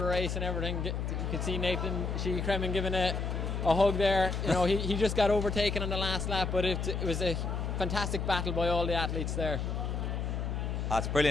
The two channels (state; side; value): noise; left; hum, 2 dB below the sound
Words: race and everything. You could see Nathan Sheehy-Cremen giving a hug there. You know, he just got overtaken on the last lap, but it was a fantastic battle by all the athletes there. That's